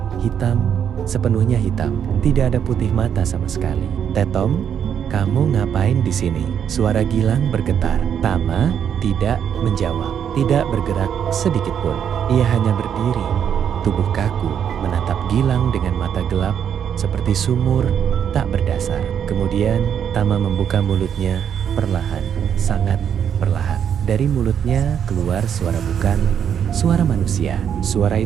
hitam, sepenuhnya hitam. Tidak ada putih mata sama sekali. Tetom, kamu ngapain di sini? Suara Gilang bergetar. Tama tidak menjawab, tidak bergerak sedikit pun. Ia hanya berdiri, tubuh kaku, menatap Gilang dengan mata gelap seperti sumur tak berdasar. Kemudian Tama membuka mulutnya perlahan, sangat perlahan. Dari mulutnya keluar suara bukan suara manusia. Suara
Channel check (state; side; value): quieter; left; 8.4 dB